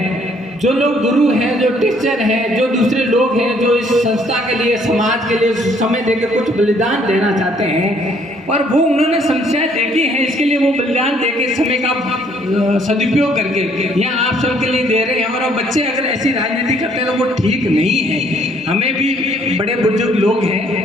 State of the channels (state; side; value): normal; both; correlation 0.64